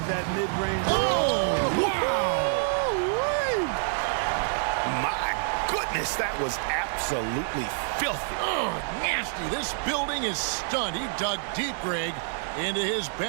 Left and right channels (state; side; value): silent; left; digital silence